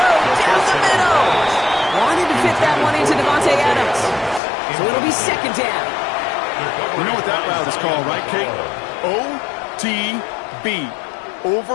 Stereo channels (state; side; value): drops out; right; at 4.4 s